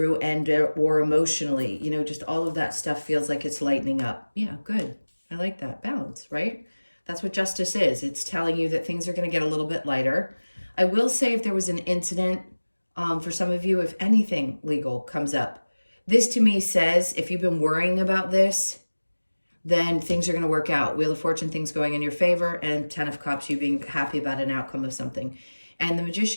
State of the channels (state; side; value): inverted; both; correlation -1.00